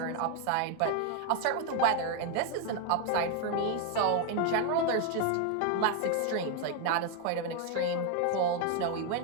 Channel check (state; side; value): different; both; correlation 0.01